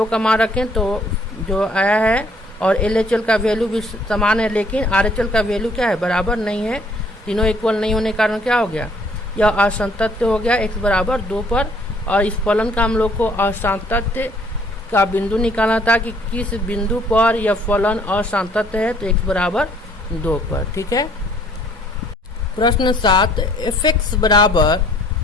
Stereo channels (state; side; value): normal; both; correlation 0.61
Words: का मान रखें तो जो आया है, और LHL का वैल्यू भी समान है, लेकिन RHL का वैल्यू क्या है, बराबर नहीं है। तीनों इक्वल नहीं होने के कारण क्या हो गया, यह असंतत्य हो गया x बराबर 2 पर। और इस फलन का हम लोग को असंतत्य का बिंदु निकालना था कि किस बिंदु पर यह फलन असंतत्य है, तो x बराबर 2 पर। ठीक है। प्रश्न 7, fx बराबर